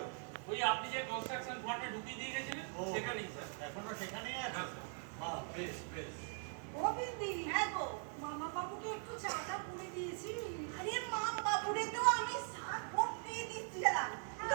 ওই আপনি যে কনস্ট্রাকশন ফার্মে ঢুকিয়ে দিয়ে গেছিলেন ও, সেখানেই স্যার। এখনো সেখানেই আছো? হ্যাঁ। বাহ, বেশ বেশ। ও বিন্দি, হ্যাঁ গো, মামা বাবুকে একটু চাটা পুড়ে দিয়েছি। আরে মাম বাবুরে তো আমি চা করতে দিচ্ছিলাম, কিন্তু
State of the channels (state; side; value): silent; left; 50 dB below the other